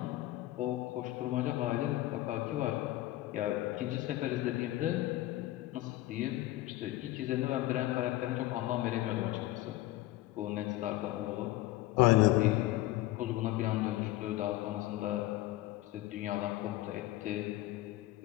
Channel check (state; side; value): quieter; right; 16.6 dB